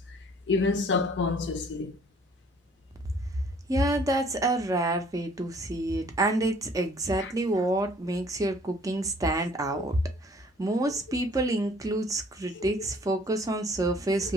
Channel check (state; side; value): normal; both; correlation 0.56